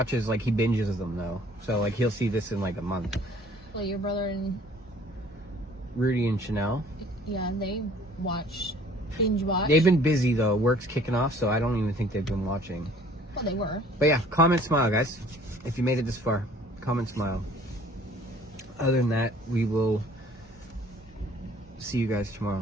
like, he binges them, though. So, like, he'll see this in, like, a month. Well, your brother and Rudy and Chanel. yeah, they binge watch. They've been busy, though. Work's kicking off, so I don't even think they've been watching. Well, they were. But yeah, comment, smile, guys. If you made it this far, comment, smile. Other than that, we will see you guys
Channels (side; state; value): both; normal; correlation 0.54